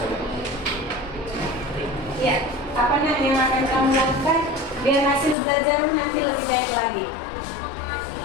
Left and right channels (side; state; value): right; drops out; at 5.4 s